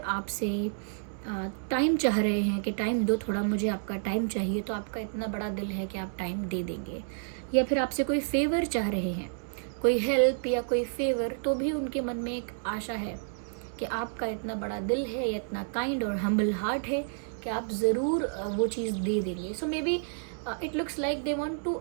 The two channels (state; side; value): silent; left; digital silence